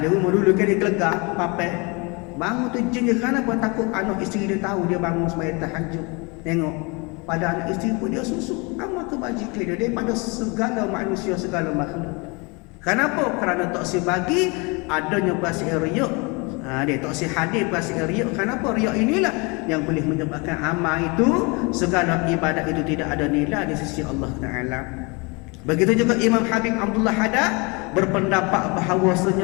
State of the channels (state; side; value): quieter; right; 29.1 dB